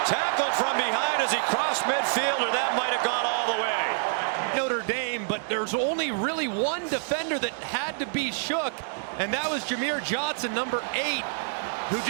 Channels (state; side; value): silent; left; 60 dB below the other